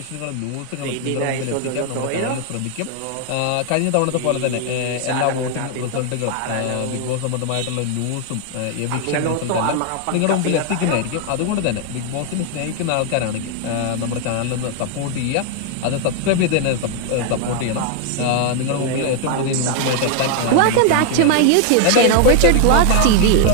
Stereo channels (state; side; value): different; both; correlation 0.00